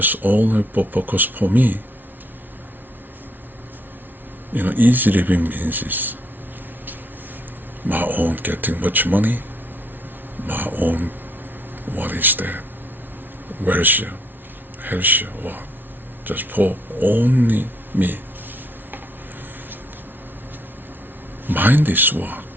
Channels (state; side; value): normal; both; correlation 0.70